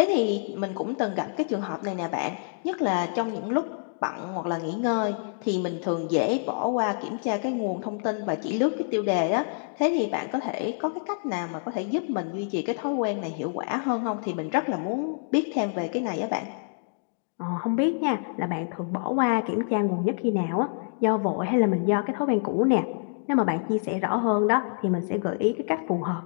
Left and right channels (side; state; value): right; silent; digital silence